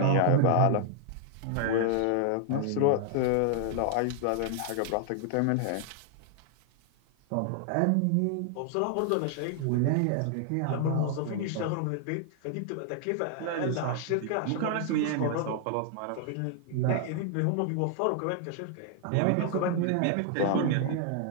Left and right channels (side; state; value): both; different; correlation 0.00